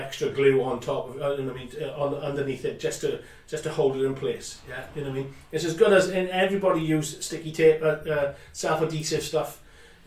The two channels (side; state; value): both; identical; correlation 1.00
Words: glue on top of, underneath it, just to hold it in place. Yeah, you know what I mean. It's as good as everybody use sticky tape, self-adhesive stuff.